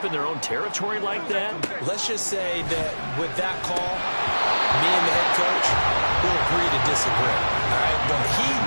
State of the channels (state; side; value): inverted; both; correlation -1.00